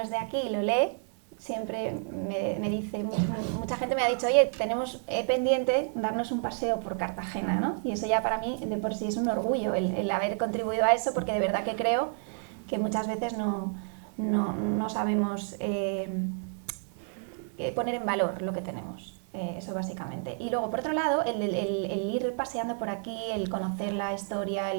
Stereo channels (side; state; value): left; silent; 58 dB below the other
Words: es de aquí lo lee, siempre me dice, mucha gente me ha dicho, oye, tenemos pendiente darnos un paseo por Cartagena, ¿no? Y eso ya para mí de por sí es un orgullo, el haber contribuido a eso, porque de verdad que creo que muchas veces no sabemos poner en valor lo que tenemos. Eso básicamente. Y luego, por otro lado, el ir paseando por aquí, el conocer la historia,